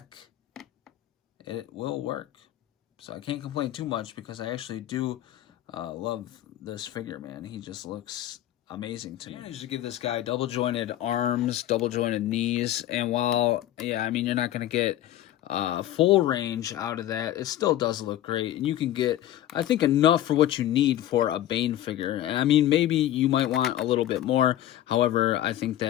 it will work. So I can't complain too much, because I actually do love this figure, man. He just looks amazing to me. I usually give this guy double jointed arms, double jointed knees, and while, yeah, I mean, you're not going to get full range out of that, it still does look great, and you can get, I think, enough for what you need for a Bane figure. And I mean, maybe you might want a little bit more. However, I think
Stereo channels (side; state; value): right; quieter; 13.0 dB